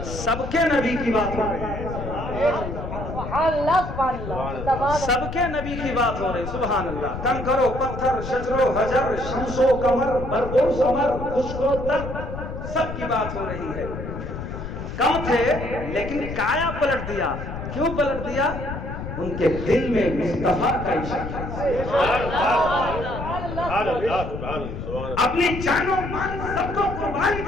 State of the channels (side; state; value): left; noise; rumble, 7 dB below the sound